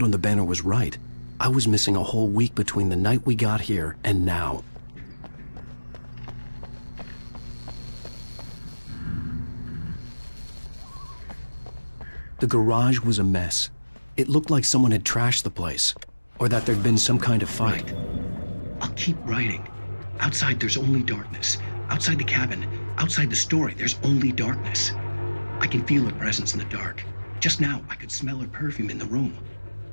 on the banner was right, I was missing a whole week between the night we got here and now. The garage was a mess. It looked like someone had trashed the place, or that there'd been some kind of fight. I'll keep writing. Outside, there's only darkness. Outside the cabin, outside the story, there's only darkness. I can feel her presence in the dark. Just now, I could smell her perfume in the room.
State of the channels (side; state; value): both; inverted; correlation -1.00